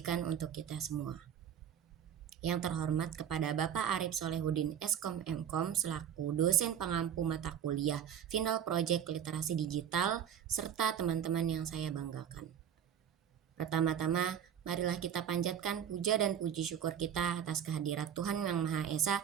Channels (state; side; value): quieter; left; 9.0 dB